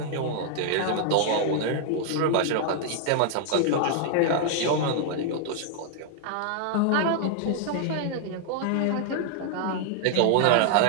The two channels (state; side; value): different; both; correlation 0.00